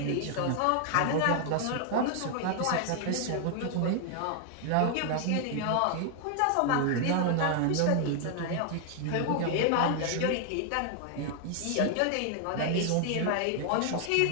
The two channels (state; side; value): different; both; correlation 0.00